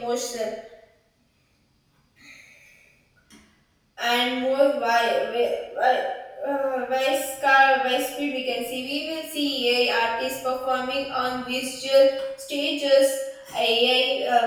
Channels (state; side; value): identical; both; correlation 1.00